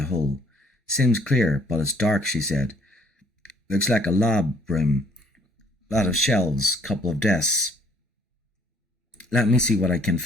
hole. "Seems clear, but it's dark," she said. "Looks like a lab room. Lot of shelves, couple of desks. Let me see what I can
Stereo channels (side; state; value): both; normal; correlation 0.61